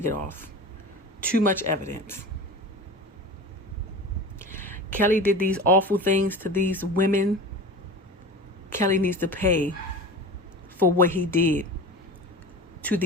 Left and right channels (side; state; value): both; normal; correlation 0.33